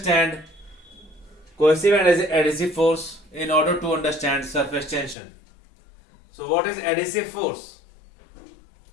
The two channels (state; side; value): drops out; right; at 5.2 s